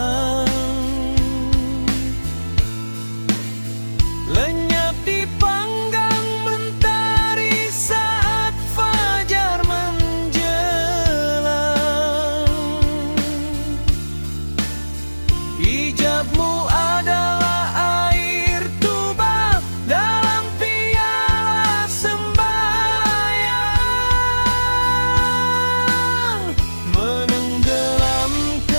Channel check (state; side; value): inverted; both; correlation -1.00